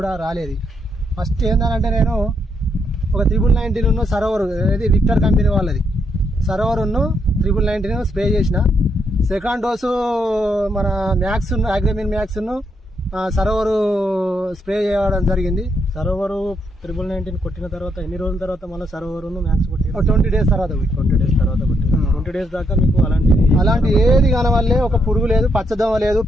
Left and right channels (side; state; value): both; normal; correlation 0.77